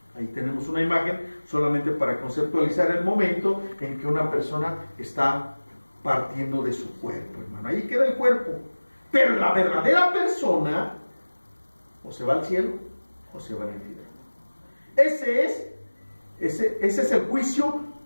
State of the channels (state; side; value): inverted; both; correlation -1.00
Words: ahí tenemos una imagen solamente para conceptualizar el momento en que una persona está partiendo de su cuerpo, hermano. Ahí queda el cuerpo. Pero la verdadera persona o se va al cielo o se va al infierno. Ese es el juicio